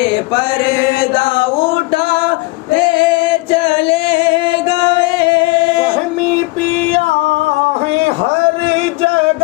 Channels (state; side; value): quieter; right; 23.6 dB